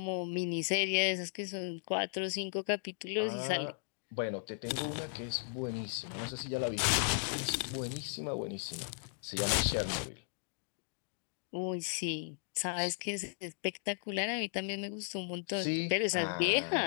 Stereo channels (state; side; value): silent; right; digital silence